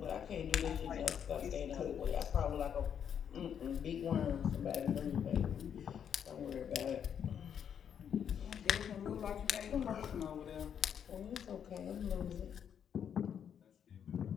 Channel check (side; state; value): right; quieter; 8.3 dB